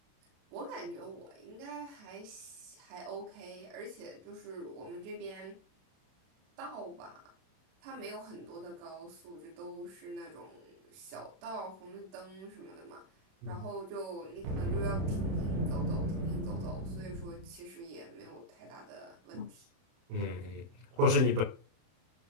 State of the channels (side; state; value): left; late; 31 ms